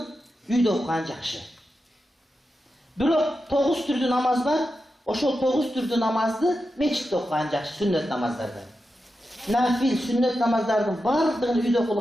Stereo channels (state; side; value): normal; both; correlation 0.89